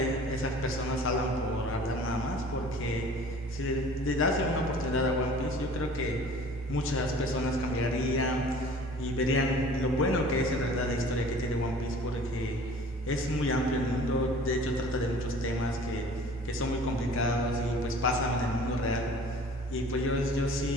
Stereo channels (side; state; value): both; normal; correlation 0.47